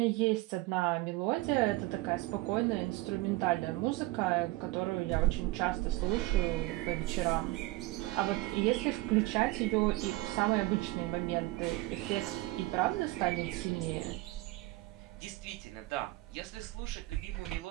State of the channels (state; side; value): quieter; left; 19.8 dB